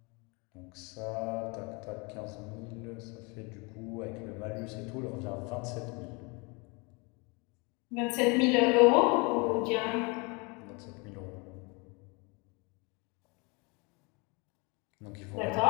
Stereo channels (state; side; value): quieter; right; 29.4 dB